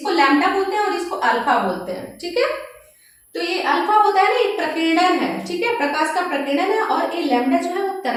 लैम्डा बोलते हैं और इसको अल्फा बोलते हैं। ठीक है, तो ये अल्फा होता है ना, ये प्रकीर्णन है। ठीक है, प्रकाश का प्रकीर्णन है, और ये लैम्डा जो है वो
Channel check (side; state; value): both; identical; correlation 1.00